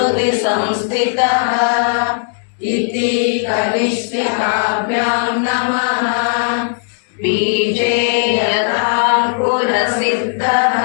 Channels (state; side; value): silent; right; digital silence